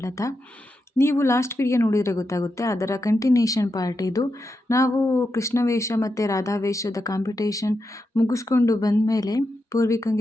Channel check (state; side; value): normal; both; correlation 0.87